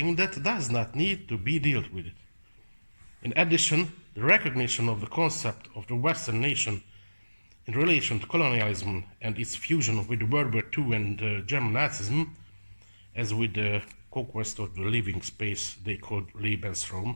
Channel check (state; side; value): inverted; both; correlation -1.00